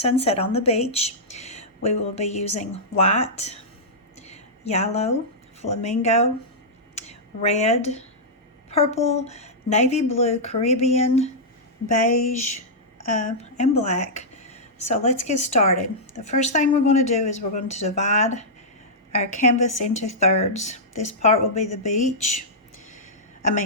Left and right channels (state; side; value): normal; both; correlation -0.11